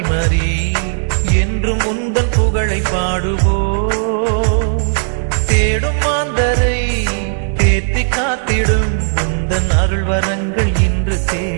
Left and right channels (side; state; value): left; silent; digital silence